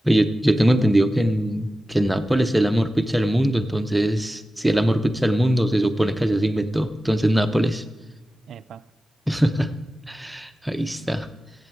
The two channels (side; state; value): both; normal; correlation 0.94